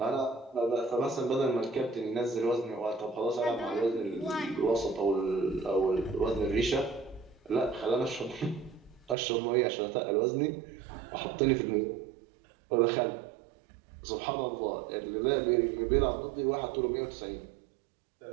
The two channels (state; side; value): drops out; left; at 9.2 s